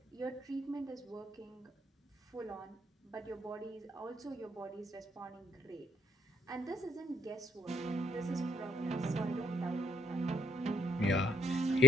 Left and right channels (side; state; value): both; normal; correlation 0.71